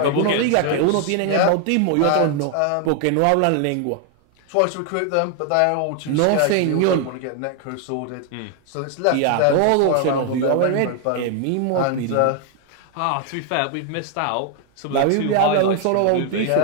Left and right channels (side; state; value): both; different; correlation 0.00